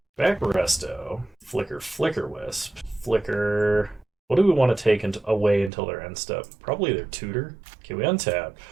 Back Resto. Flicker Wisp. Flicker. What do we want to take away until their end step? Probably their tutor. Okay, we untap.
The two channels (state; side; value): drops out; left; at 5.7 s